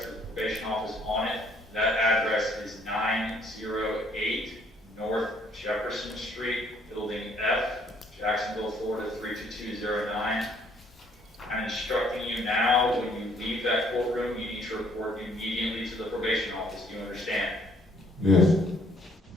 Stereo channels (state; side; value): normal; both; correlation 0.64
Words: of the probation office on it. That address is 908 North Jefferson Street, Building F, Jacksonville, Florida 32209. I'm instructing you now, when you leave that courtroom, you need to report immediately to the probation office. Do you understand? Yes.